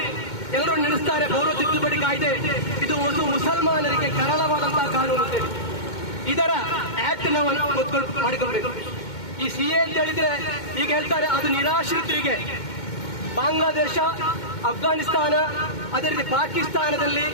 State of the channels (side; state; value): right; late; 2.2 ms